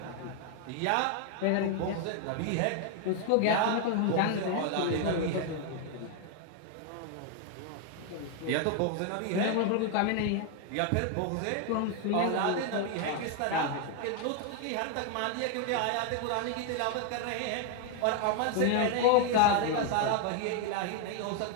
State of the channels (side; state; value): both; different; correlation 0.01